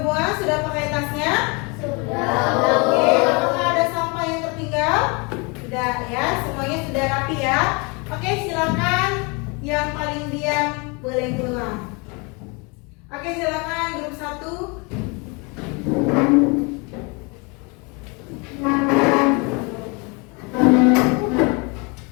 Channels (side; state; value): right; quieter; 30.4 dB